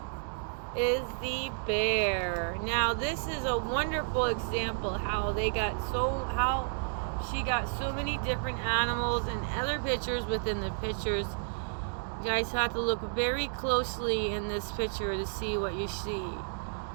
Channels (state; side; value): silent; left; digital silence